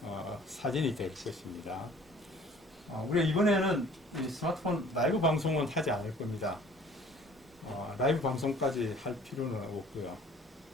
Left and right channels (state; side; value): normal; both; correlation 0.51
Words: 사진이 될 것입니다. 우리가 이번에는 이 스마트폰 라이브 방송은 하지 않을 겁니다. 라이브 방송까지 할 필요는 없고요.